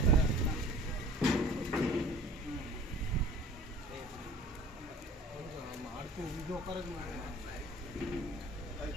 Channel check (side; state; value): both; normal; correlation 0.46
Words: அடுத்து இது உட்கார அது